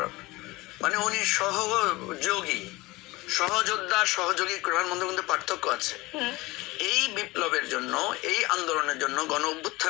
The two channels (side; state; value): right; quieter; 21.3 dB